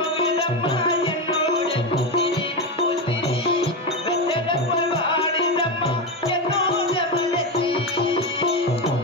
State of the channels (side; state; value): both; normal; correlation 0.14